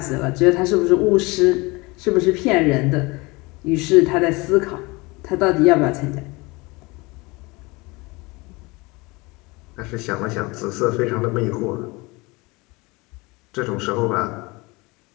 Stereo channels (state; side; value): quieter; right; 24.6 dB